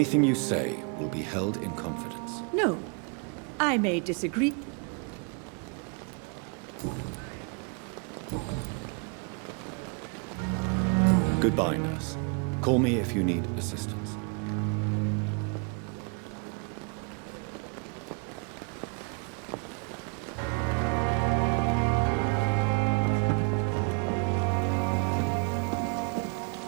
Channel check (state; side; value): quieter; left; 36.8 dB